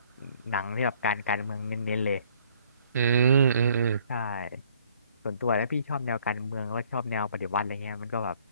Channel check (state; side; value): inverted; both; correlation -0.61